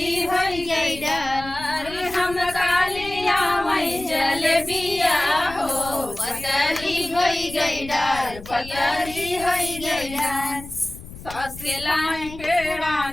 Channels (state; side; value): noise; left; rumble, 15 dB below the sound